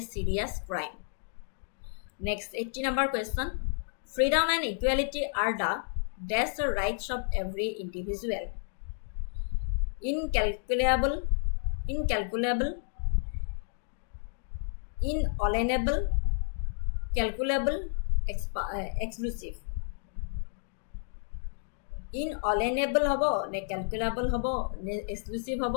serious crime. Next, 80 number question. Freedom and equality are the dash rights of every individual. Incalculable, inalienable, calculable, exclusive. Inalienable হব নে calculable হব নে exclusive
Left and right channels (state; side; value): silent; right; digital silence